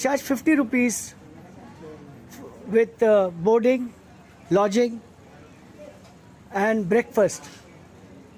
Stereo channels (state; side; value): identical; both; correlation 1.00